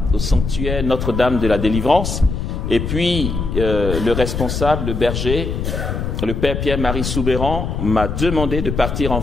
au sanctuaire Notre-Dame de la Délivrance. Et puis, le responsable, le berger, le père Pierre-Marie Soubéran, m'a demandé de partir en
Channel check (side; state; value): left; noise; rumble, 3 dB below the sound